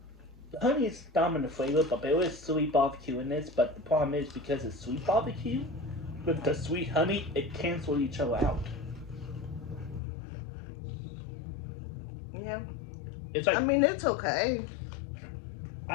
The honey is dominant flavor, but there is sweet barbecue in this. But the problem is because it's sweet barbecue, with the sweet honey, it cancels each other out. Yeah. It's like I mean, it's okay.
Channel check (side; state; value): right; drops out; at 10.0 s